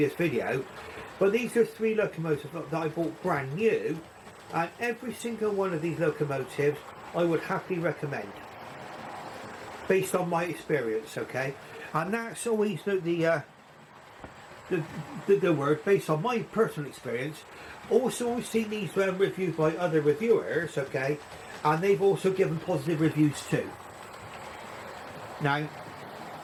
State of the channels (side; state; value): both; identical; correlation 1.00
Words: video, but these are 3 locomotives that I bought brand new, and every single one of these locomotives I would happily recommend based on my experience, okay? And that's always the word, based on my personal experience. Also, we've seen these reviewed by other reviewers, okay, and they've also given positive reviews too. Now,